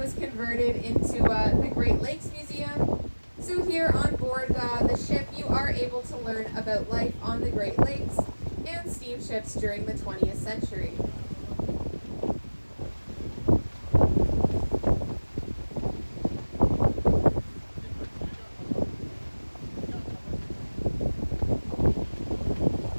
converted into the Great Lakes Museum. So here on board the ship, you are able to learn about life on the Great Lakes and steamships during the 20th century.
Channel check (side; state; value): both; inverted; correlation -1.00